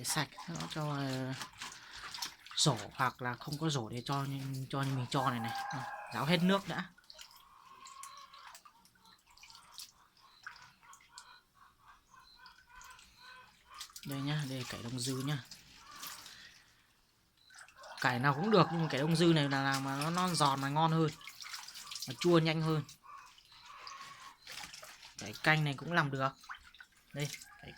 sạch nó cho rổ, hoặc là không có rổ để cho như mình cho này này. Ráo hết nước đã. Đây nhá, đây cải đông dư nhá. Cải nào cũng được nhưng mà cải đông dư này là làm mà nó non giòn mà ngon hơn, nó chua nhanh hơn. Cải canh này cũng làm được. Đây cải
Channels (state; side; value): identical; both; correlation 1.00